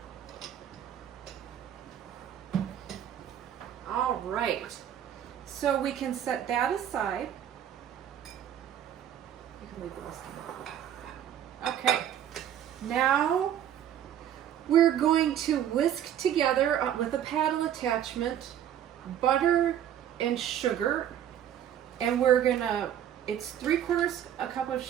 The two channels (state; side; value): quieter; left; 10.3 dB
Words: All right. So we can set that aside. You can leave the rest of it. Okay. Now we're going to whisk together with a paddle attachment butter and sugar, and we're gonna, it's 3/4 a cup of